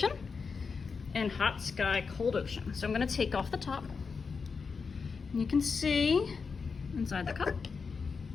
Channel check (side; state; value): right; quieter; 5.2 dB